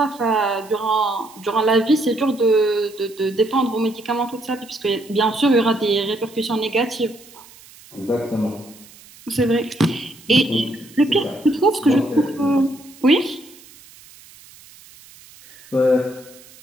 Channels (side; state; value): right; noise; hiss, 23 dB below the sound